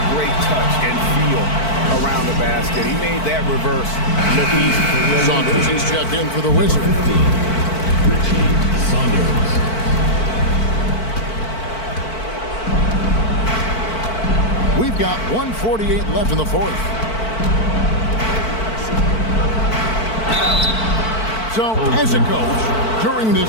great touch and feel around the basket. He made that reverse look easy. Saunders is checked in for the Wizards. 15, Richie Saunders. We've got 1:48 left in the fourth. So, as a coach, during this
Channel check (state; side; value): late; right; 4.5 ms